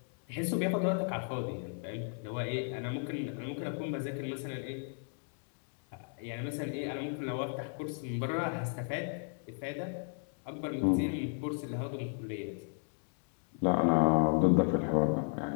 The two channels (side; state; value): right; silent; 55 dB below the other